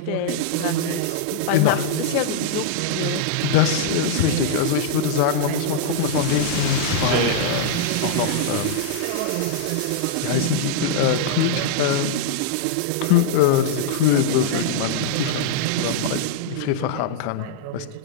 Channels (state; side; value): different; both; correlation -0.02